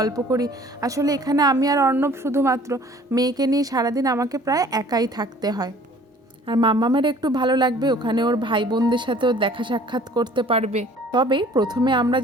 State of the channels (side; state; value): both; normal; correlation 0.52